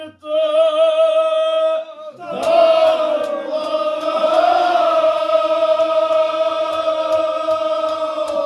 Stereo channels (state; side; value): identical; both; correlation 1.00